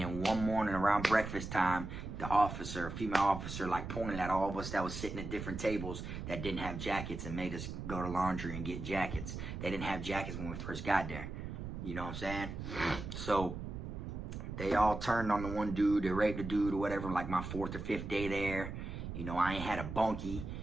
one morning around breakfast time, the officer, female officer, like pointed at all of us that was sitting at different tables that didn't have jackets and made us go to laundry and get jackets. They didn't have jackets when we first got there. You know what I'm saying? So they all turned on the one dude, they raped the dude or whatever, like my 4th or 5th day there. You know, I ain't had a bunkie,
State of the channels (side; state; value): right; noise; rumble, 7 dB below the sound